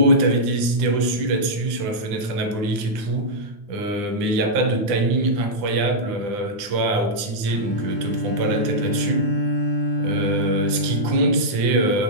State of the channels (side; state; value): left; late; 9.8 ms